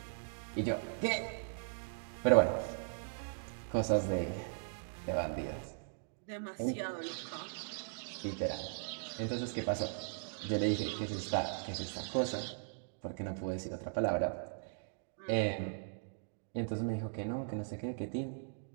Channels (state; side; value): silent; left; digital silence